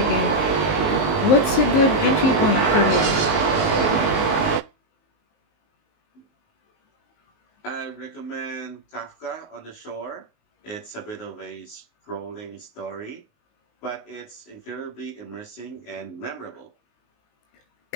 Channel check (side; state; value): right; late; 19 ms